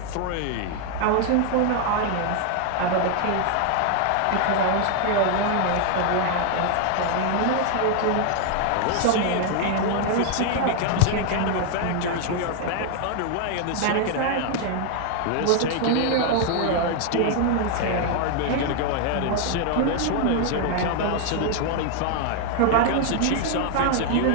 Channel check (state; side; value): different; both; correlation 0.00